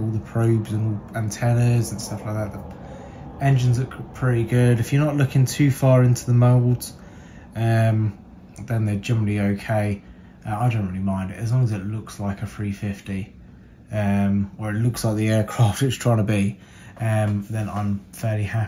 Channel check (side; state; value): both; identical; correlation 1.00